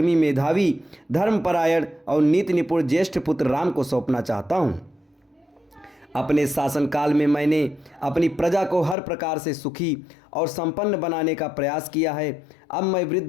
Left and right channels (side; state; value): right; drops out; at 9.0 s